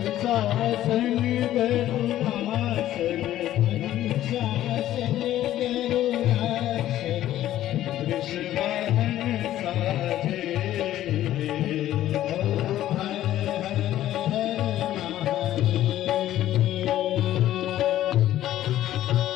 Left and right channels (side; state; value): right; quieter; 13.2 dB